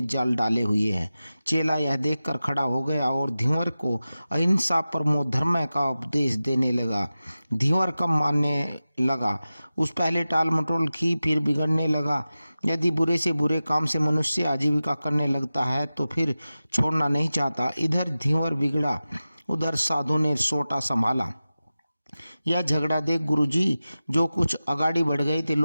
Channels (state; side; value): inverted; both; correlation -0.95